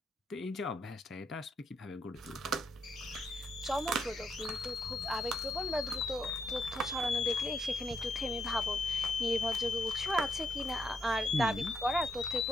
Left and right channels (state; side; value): normal; both; correlation 0.77